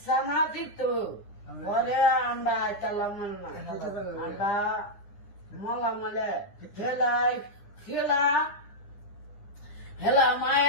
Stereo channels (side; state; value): right; late; 9.9 ms